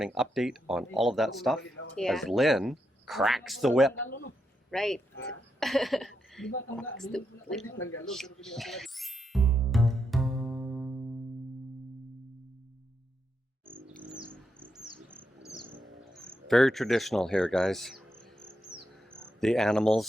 update on all of that stuff as Lynn cracks the whip. Right. Very traditional here, guys. The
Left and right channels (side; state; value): both; normal; correlation 0.82